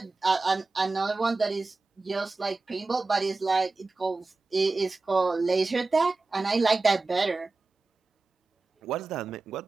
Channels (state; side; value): quieter; left; 3.6 dB